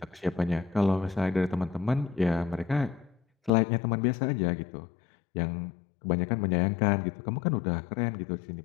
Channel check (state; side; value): drops out; right; at 3.5 s